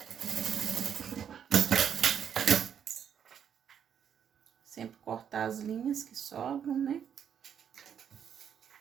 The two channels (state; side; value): quieter; left; 8.4 dB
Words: Sempre cortar as linhas que sobram, né?